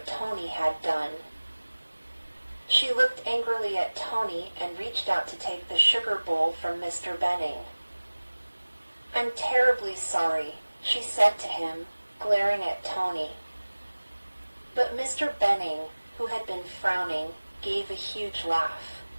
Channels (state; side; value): inverted; both; correlation -1.00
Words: Tony had done. She looked angrily at Tony and reached out to take the sugar bowl from Mr. Benning. "I'm terribly sorry," she said to him, glaring at Tony. But Mr. Benning, who had been frowning, gave a huge laugh.